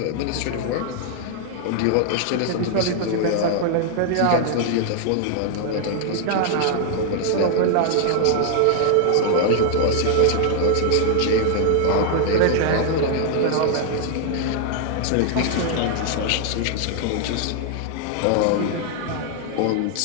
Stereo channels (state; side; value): different; both; correlation 0.00